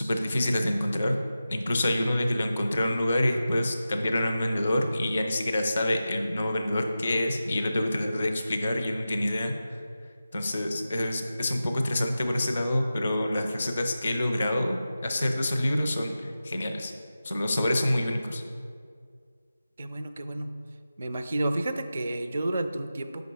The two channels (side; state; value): both; inverted; correlation -0.93